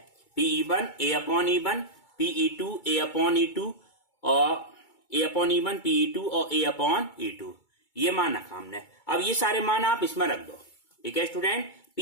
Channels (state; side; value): late; right; 2.2 ms